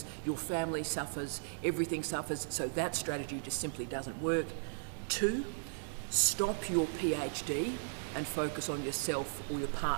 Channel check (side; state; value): left; silent; 54 dB below the other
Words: your family suffers, everything suffers. So that strategy just simply doesn't work. 2, stop your PhD and focus on yourself or your